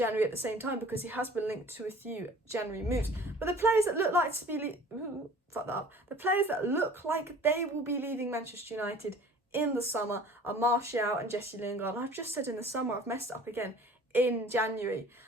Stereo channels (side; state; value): both; normal; correlation 0.48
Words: at the same time, because he has been linked to a few January moves. But the players that look like to be the players that look like they will be leaving Manchester United in the summer are Martial and Jesse Lingard. And I've just said in the summer, I've messed it up again, in January.